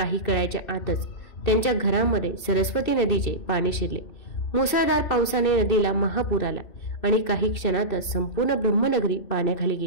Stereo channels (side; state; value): right; late; 2.6 ms